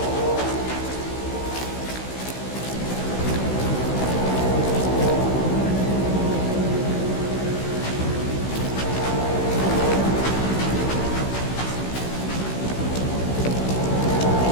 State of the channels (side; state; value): right; late; 16 ms